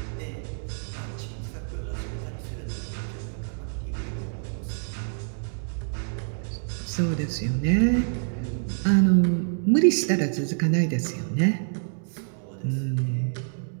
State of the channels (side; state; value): left; silent; digital silence